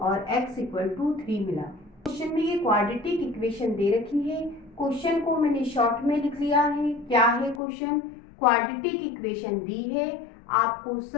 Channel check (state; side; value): drops out; right; at 7.6 s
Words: x इक्वल टू 3 मिला। क्वेश्चन में ये क्वाड्रेटिक इक्वेशन दे रखी है, क्वेश्चन को मैंने शॉर्ट में लिख लिया है। क्या है क्वेश्चन? क्वाड्रेटिक इक्वेशन दी है, आपको